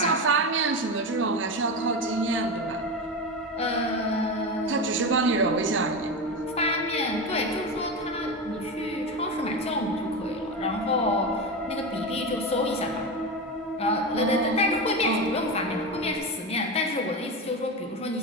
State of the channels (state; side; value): normal; both; correlation 0.19